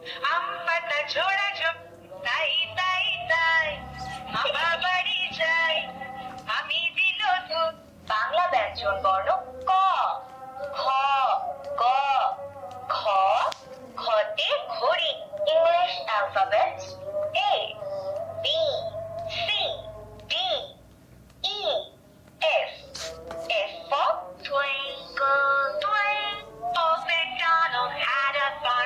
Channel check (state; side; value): identical; both; correlation 1.00